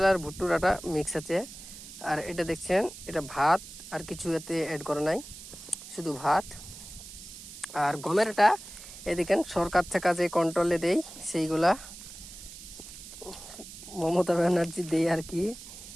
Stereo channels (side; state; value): right; noise; hiss, 14 dB below the sound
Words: আর ভুট্টুর আটা মিক্স আছে। আর এটা দেখছেন, এটা ভাত, আর কিছু এতে অ্যাড করা নাই, শুধু ভাত। আর গমের আটা এদিকে সরকার থেকে যে কন্ট্রোলে দেই সেইগুলা, মমতা ব্যানার্জি দেয় আর কি,